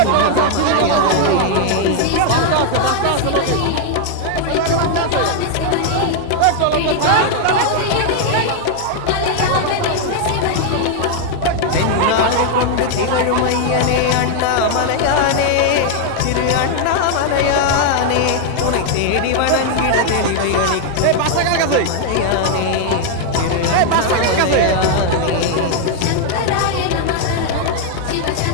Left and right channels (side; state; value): both; different; correlation 0.00